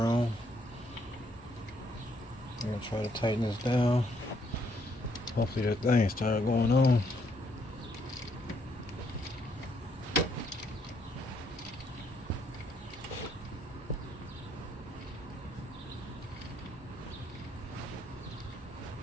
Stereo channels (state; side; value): normal; both; correlation 0.71